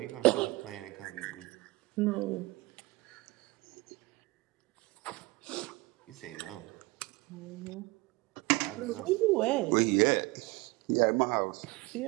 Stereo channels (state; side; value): quieter; left; 22.9 dB